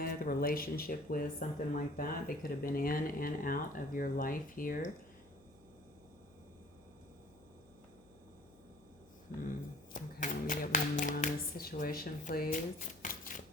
a relationship with, something like that. They could have been in and out of your life here. Okay, let me get one more on this situation, please.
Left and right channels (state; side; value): noise; left; hum, 28 dB below the sound